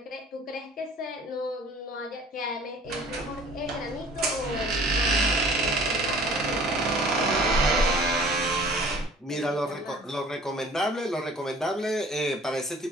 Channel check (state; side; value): normal; both; correlation 0.50